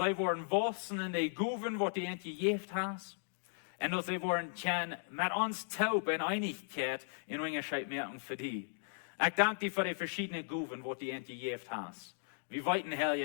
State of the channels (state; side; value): silent; right; digital silence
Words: worden wachsen in die Guven, was du ihnen gegeben hast. Und dass sie worden können mit uns taub in Einigkeit in Unterschied merken für die. Ich danke dir für die verschiedenen Guven, die du ihnen gegeben hast. Wir weiten, Herr,